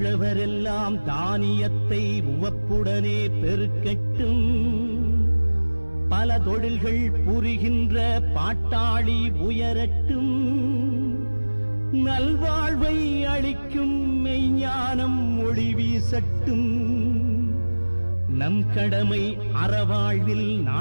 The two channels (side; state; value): both; inverted; correlation -1.00